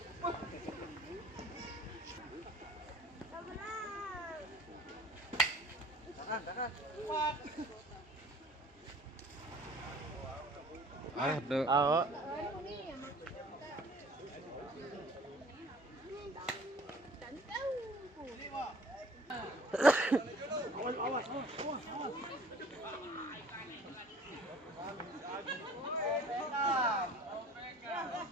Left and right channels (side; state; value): both; normal; correlation 0.49